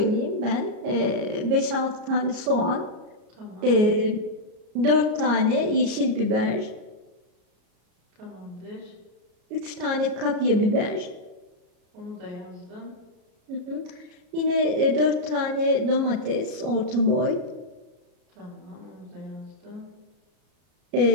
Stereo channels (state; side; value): late; left; 33 ms